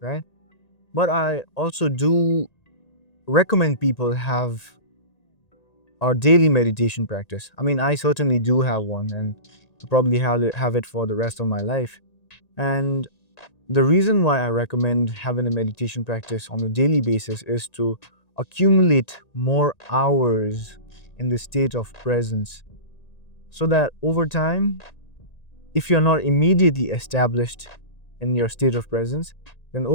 right? But I also do recommend people have our daily meditation practice. I mean, I certainly do have one, and I probably have it for the rest of my life. And the reason why I recommend having a meditation practice on a daily basis is to accumulate more hours in the state of presence, so that over time, if you're not immediately established in your state of presence, then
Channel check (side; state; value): right; late; 1.9 ms